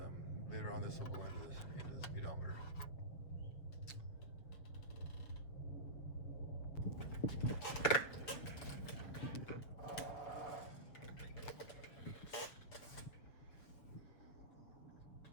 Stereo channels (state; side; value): late; right; 6.9 ms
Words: later on, this will go into the speedometer.